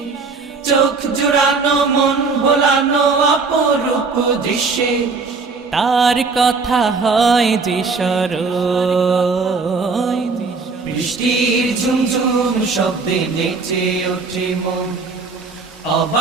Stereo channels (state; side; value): quieter; left; 4.4 dB